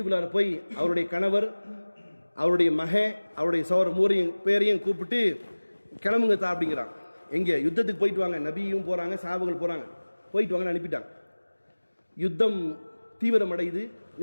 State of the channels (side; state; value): both; inverted; correlation -1.00